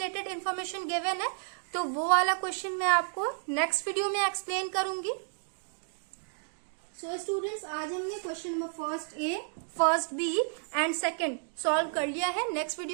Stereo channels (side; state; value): left; silent; digital silence